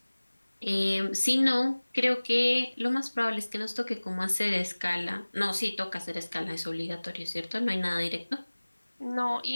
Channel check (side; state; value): both; inverted; correlation -1.00